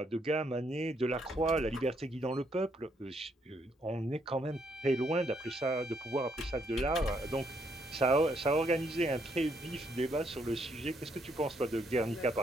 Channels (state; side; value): normal; both; correlation 0.73